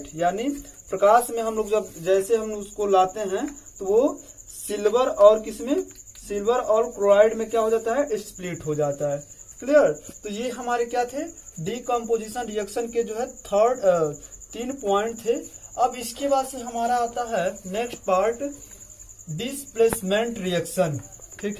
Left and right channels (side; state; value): both; identical; correlation 1.00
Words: यानी प्रकाश में हम लोग जब जैसे हम उसको लाते हैं तो वो सिल्वर और क्लोराइड में क्या हो जाता है स्प्लिट हो जाता है। क्लियर, तो ये हमारे क्या थे डिकम्पोजिशन रिएक्शन के जो है थर्ड 3 पॉइंट थे। अब इसके बाद से हमारा आता है नेक्स्ट पार्ट डिस्प्लेसमेंट रिएक्शन।